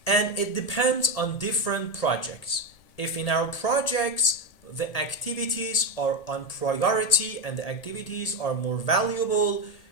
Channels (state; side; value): late; right; 1.8 ms